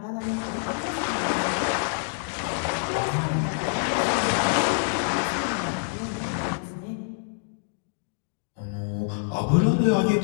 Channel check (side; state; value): right; silent; digital silence